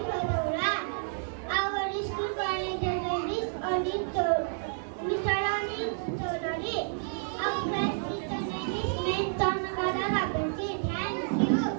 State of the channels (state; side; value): silent; left; digital silence